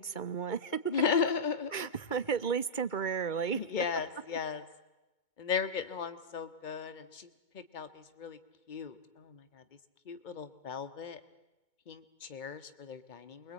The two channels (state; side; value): late; right; 2.2 ms